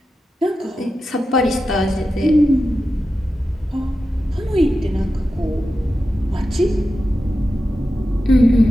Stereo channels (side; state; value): both; normal; correlation 0.91